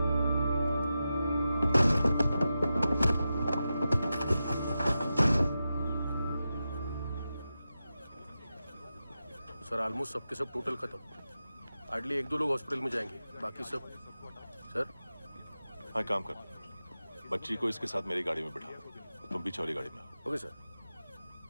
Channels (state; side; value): inverted; both; correlation -0.91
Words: सर ऑलमोस्ट सबके सब टोटल खत्म। हार्डली 1-2 लोग हॉस्पिटल में जाएंगे, बाकी सब। सर हाँ, काम कर, बच्ची को इसके साथ मेरी गाड़ी में बिठा, तुम पीछे वाली गाड़ी में। Okay sir.